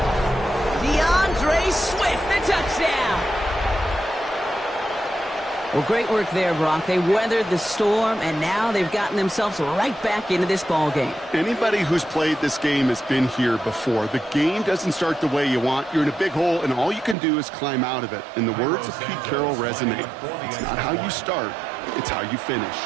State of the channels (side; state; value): left; drops out; at 17.2 s